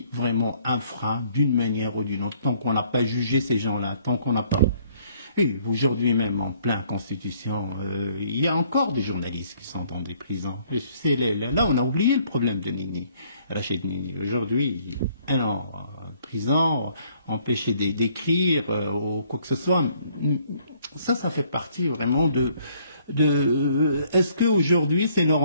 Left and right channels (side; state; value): both; inverted; correlation -0.64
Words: vraiment un frein d'une manière ou d'une autre, tant qu'on n'a pas jugé ces gens-là, tant qu'on n'a pas... Oui, aujourd'hui même, en plein Constitution, il y a encore des journalistes qui sont dans des prisons. Là, on a oublié le problème de Nini, Rachid Nini. Aujourd'hui, un an en prison, empêché d'écrire ou quoi que ce soit. Ça fait partie vraiment est-ce qu'aujourd'hui c'est